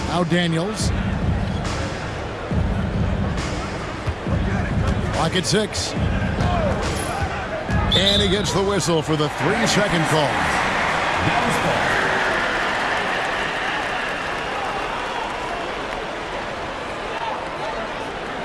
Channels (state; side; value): identical; both; correlation 1.00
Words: Now Daniels. Clock at 6. And he gets the whistle for the 3-second call.